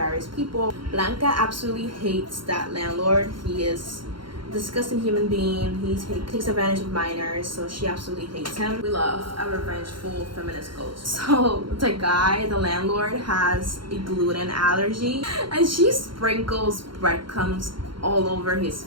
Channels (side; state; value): left; late; 0.73 ms